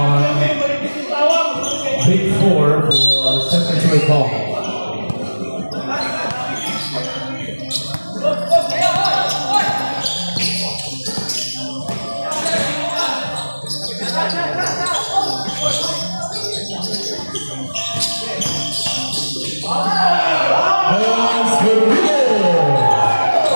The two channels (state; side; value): inverted; both; correlation -1.00